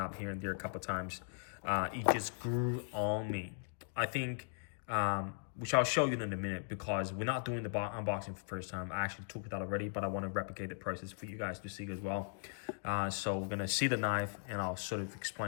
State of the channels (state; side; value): silent; right; digital silence